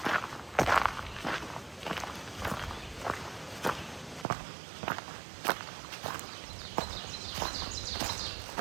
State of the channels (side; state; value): left; drops out; at 4.2 s